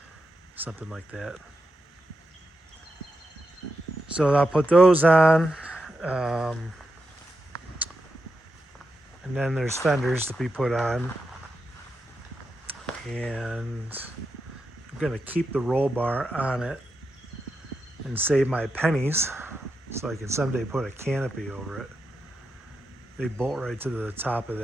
something like that. So I'll put those on. And then there's fenders to be put on. And I'm going to keep the roll bar on it and save my pennies so I can someday put a canopy over it. They bolt right to the top of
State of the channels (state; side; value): normal; both; correlation 0.87